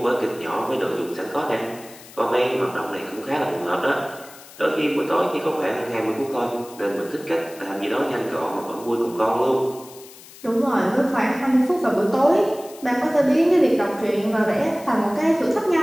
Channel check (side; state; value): left; noise; hiss, 20 dB below the sound